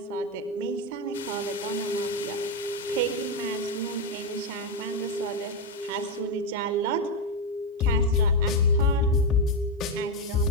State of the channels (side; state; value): both; normal; correlation 0.06